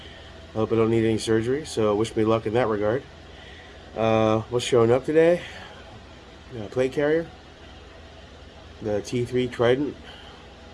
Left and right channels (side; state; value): both; identical; correlation 1.00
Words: Hope I don't need any surgery, so wish me luck in that regard. What's showing up today? Plate carrier, the T3 Trident